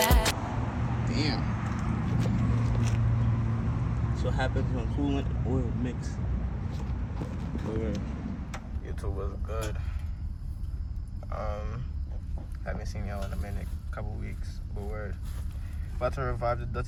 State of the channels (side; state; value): both; identical; correlation 1.00